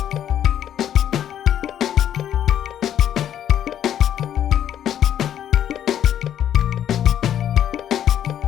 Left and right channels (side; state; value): right; quieter; 10.4 dB